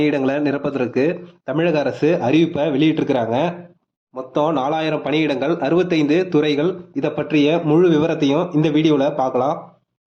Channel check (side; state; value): both; identical; correlation 1.00